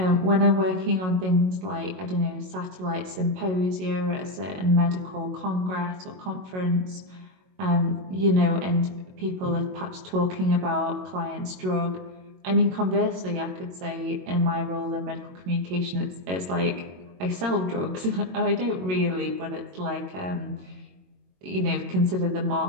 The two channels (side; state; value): left; late; 22 ms